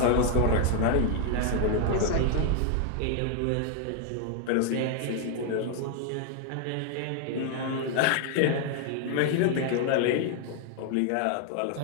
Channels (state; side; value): different; both; correlation 0.00